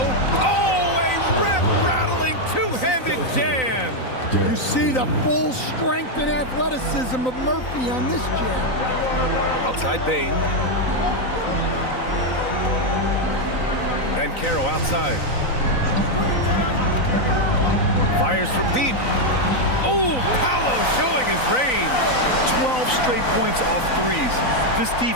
Oh, a rip-rattling two-handed jam. You see the full strength and athleticism of Murphy on this jam. Outside Bane. Banchero outside. Fires from deep. Oh, Paolo showing his range. 12 straight points off 3s. This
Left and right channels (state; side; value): late; right; 3.9 ms